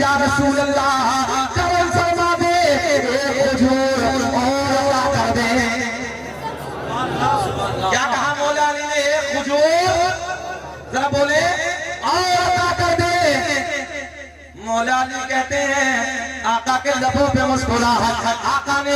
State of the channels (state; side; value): identical; both; correlation 1.00